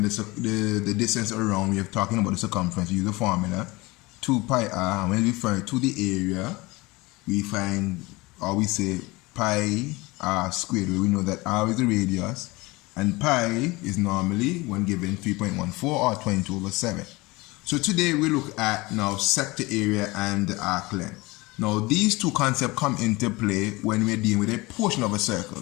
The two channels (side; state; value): right; quieter; 22.8 dB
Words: the distance around, we are talking about the circumference, we use the formula 2 pi r, and when we refer to the area, we find, or we say pi r squared, where we know that r is the radius and pi is normally, when given, 3.14 or 22/7. So today we look at now sector area and arc length. Now these two concepts come into play when we're dealing with a portion of a circle.